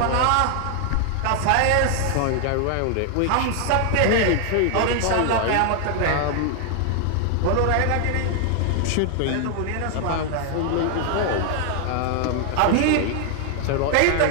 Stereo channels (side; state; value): both; different; correlation 0.00